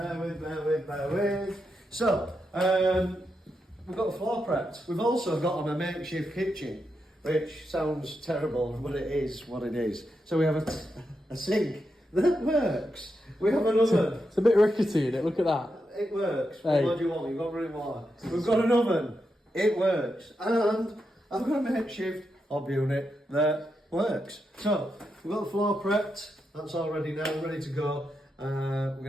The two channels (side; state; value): both; normal; correlation 0.85